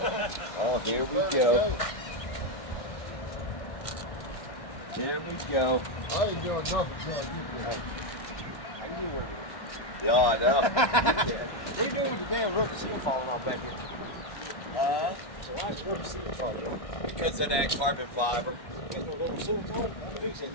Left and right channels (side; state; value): right; late; 1.2 ms